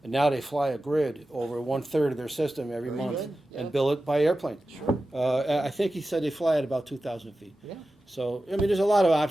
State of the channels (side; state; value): both; normal; correlation 0.94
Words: And now they fly a grid over 1/3 of their system every Very month good, yeah. and bill it by airplane. Sure. I think he said they fly at about 2,000 feet. Yeah. So, I mean, there's a lot of